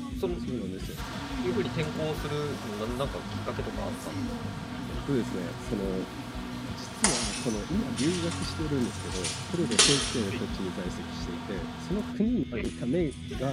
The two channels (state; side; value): identical; both; correlation 1.00